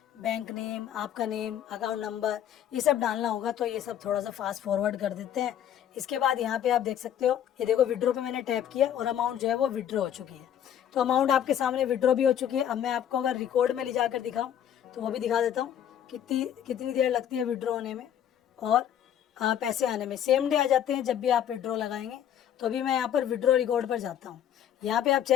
बैंक नेम, आपका नेम, अकाउंट नंबर, ये सब डालना होगा। तो ये सब थोड़ा सा फास्ट फॉरवर्ड कर देते हैं। इसके बाद यहाँ पे आप देख सकते हो, ये देखो विड्रॉ पे मैंने टैप किया और अमाउंट जो है वो विड्रॉ हो चुकी है। तो अमाउंट आपके सामने विड्रॉ भी हो चुकी है। अब मैं आपको अगर रिकॉर्ड में ले जाकर दिखाऊँ तो वो भी दिखा देता हूँ कितनी देर लगती है विड्रॉ होने में और पैसे आने में। सेम डे आ जाते हैं जब भी आप विड्रॉ लगाएंगे। तो अभी मैं यहाँ पर विड्रॉ रिकॉर्ड पर जाता हूँ। यहाँ पे आप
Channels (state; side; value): quieter; right; 10.1 dB